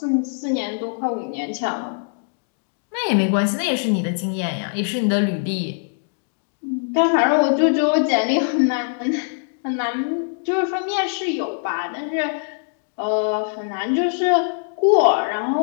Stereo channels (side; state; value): right; silent; digital silence